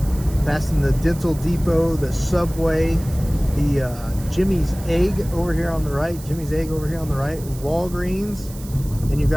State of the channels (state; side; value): noise; right; hiss, 18 dB below the sound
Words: Passing the Dental Depot, the Subway, the Jimmy's Egg over here on the right, Walgreens, and you've